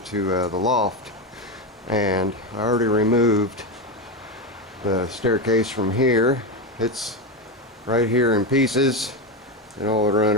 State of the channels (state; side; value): normal; both; correlation 0.13